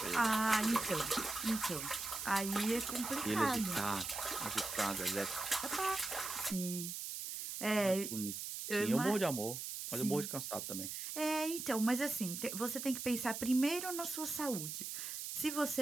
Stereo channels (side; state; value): right; noise; hiss, 5 dB below the sound